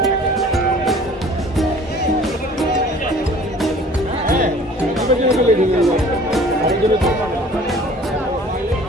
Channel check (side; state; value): both; normal; correlation 0.49